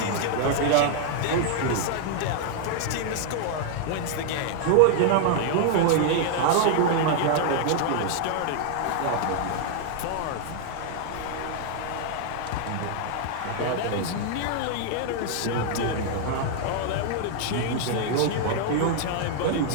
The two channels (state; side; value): different; both; correlation 0.00